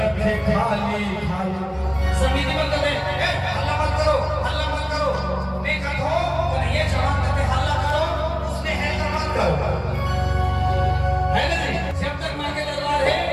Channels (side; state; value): both; identical; correlation 1.00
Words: है खाली खाली। समिति बंद कर दे, हल्ला मत करो, हल्ला मत करो। मैं कहता हूँ ये जवान करके हल्ला करो, उसने है तो मत करो, है ना जी? जब तक माँ के दरबार है